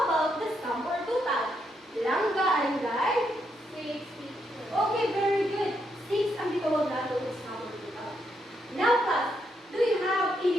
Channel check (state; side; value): normal; both; correlation 0.79